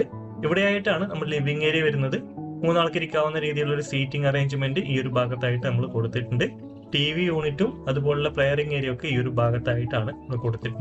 ഇവിടെയായിട്ടാണ് നമ്മൾ ലിവിംഗ് ഏരിയ വരുന്നത്. 3 ആൾക്ക് ഇരിക്കാവുന്ന രീതിയിലുള്ള ഒരു സീറ്റിംഗ് അറേഞ്ച്മെന്റ് ഈ ഒരു ഭാഗത്തായിട്ട് നമ്മൾ കൊടുത്തിട്ടുണ്ട്. TV യൂണിറ്റും അതുപോലുള്ള പ്ലെയറിംഗ് ഏരിയ ഒക്കെ ഈ ഒരു ഭാഗത്തായിട്ടാണ് നമ്മൾ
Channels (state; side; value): identical; both; correlation 1.00